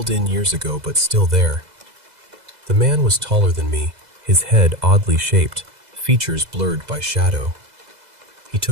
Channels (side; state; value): left; late; 2.0 ms